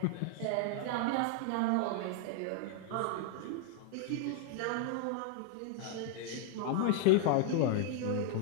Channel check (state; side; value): different; both; correlation 0.00